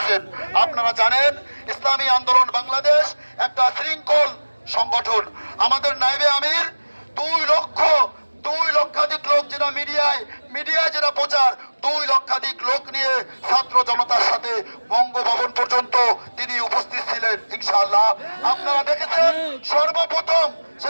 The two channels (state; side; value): inverted; both; correlation -1.00